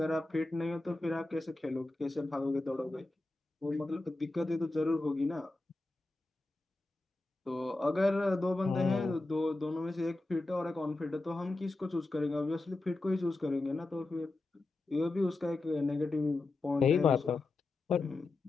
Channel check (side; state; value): right; quieter; 3.0 dB